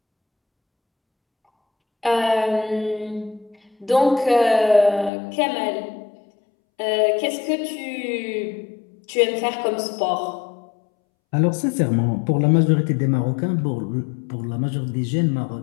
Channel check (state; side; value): drops out; right; at 5.1 s